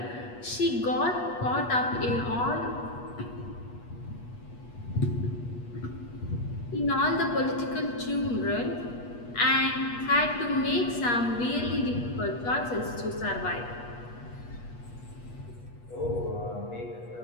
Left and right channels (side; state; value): right; late; 8.3 ms